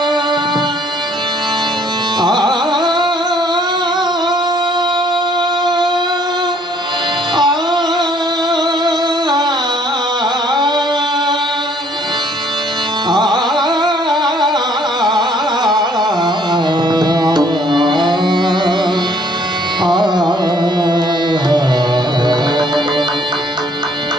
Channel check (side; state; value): both; normal; correlation 0.62